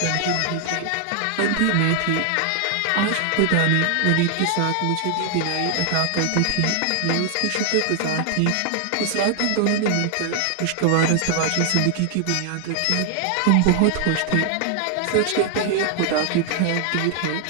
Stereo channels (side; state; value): both; different; correlation 0.00